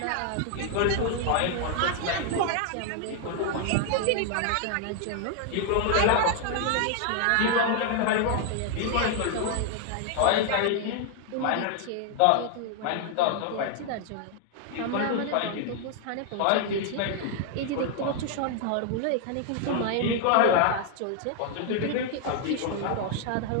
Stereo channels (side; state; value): both; different; correlation 0.00